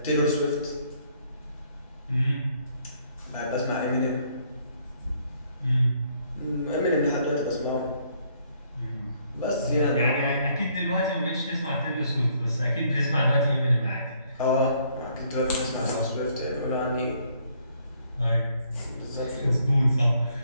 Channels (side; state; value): both; inverted; correlation -0.67